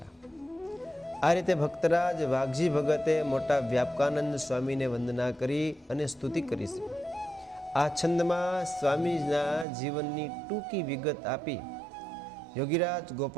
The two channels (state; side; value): drops out; left; at 9.7 s